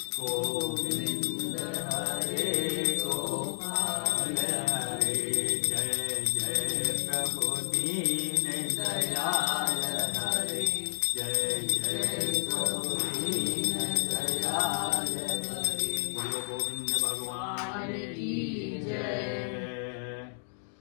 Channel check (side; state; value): right; silent; digital silence